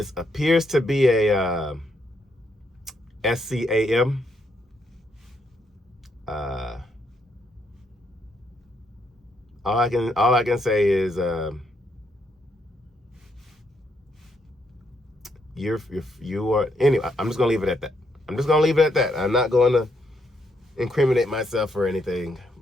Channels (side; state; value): both; normal; correlation 0.76